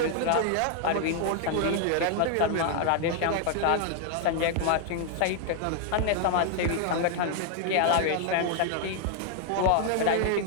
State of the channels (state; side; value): different; both; correlation 0.00